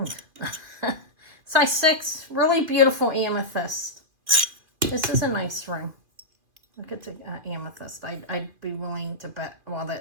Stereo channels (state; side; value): late; left; 2.3 ms